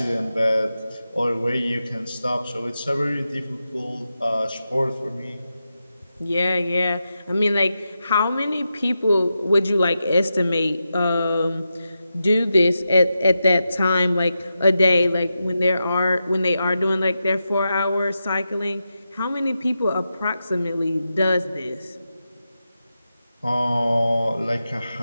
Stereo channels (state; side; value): inverted; both; correlation -0.89